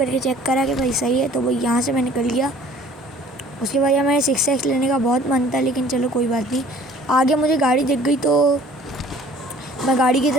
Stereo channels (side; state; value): both; normal; correlation 0.52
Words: चेक करा कि भाई सही है, तो भाई यहाँ से मैं निकल गया। उसके बाद यार मैंने 6x लेने का बहुत मन था, लेकिन चलो कोई बात नहीं। आगे मुझे गाड़ी दिख गई तो मैं गाड़ी की